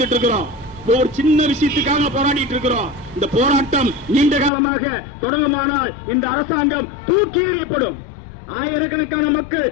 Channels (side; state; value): right; drops out; at 4.5 s